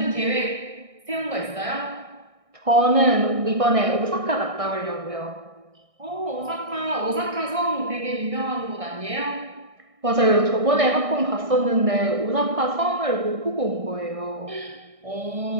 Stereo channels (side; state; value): left; late; 1.6 ms